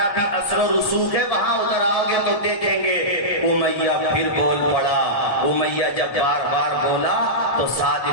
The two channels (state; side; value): late; right; 1.7 ms